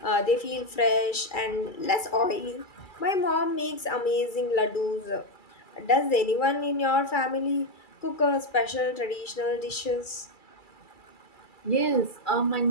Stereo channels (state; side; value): late; right; 2.3 ms